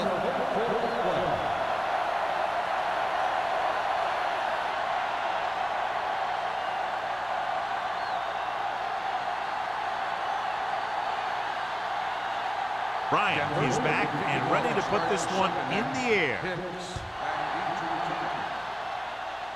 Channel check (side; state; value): both; identical; correlation 1.00